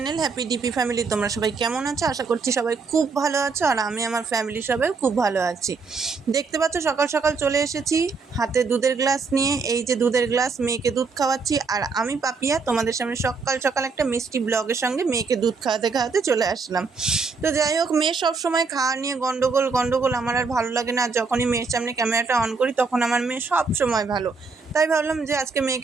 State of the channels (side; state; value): left; quieter; 4.6 dB